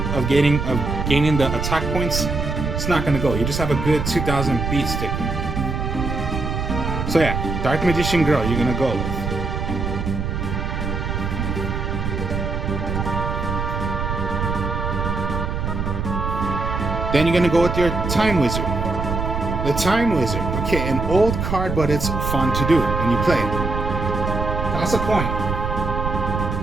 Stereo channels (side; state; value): right; noise; rumble, 2 dB below the sound